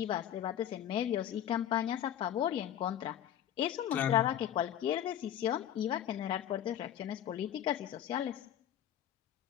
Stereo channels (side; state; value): right; quieter; 10.7 dB